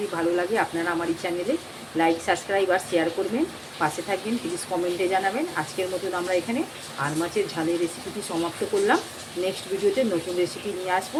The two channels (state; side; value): identical; both; correlation 1.00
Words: আপনারা আমার এই চ্যানেলে লাইক, সাবস্ক্রাইব আর শেয়ার করবেন, পাশে থাকবেন, প্লিজ কমেন্টে জানাবেন। আজকের মতন আমরা এখানে আর মাছের ঝালের রেসিপিটি সমাপ্ত করলাম। নেক্সট ভিডিওতে নতুন রেসিপি নিয়ে আসবো।